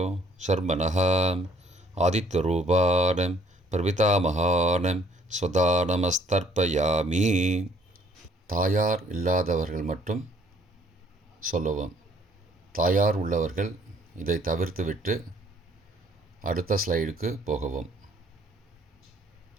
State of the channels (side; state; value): both; normal; correlation 0.61